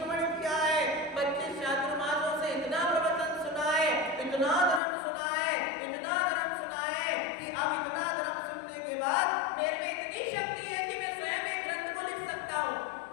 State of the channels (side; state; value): right; drops out; at 4.8 s